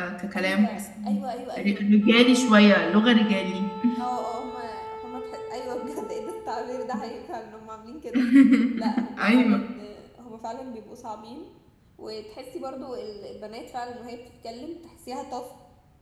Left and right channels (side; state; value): both; identical; correlation 1.00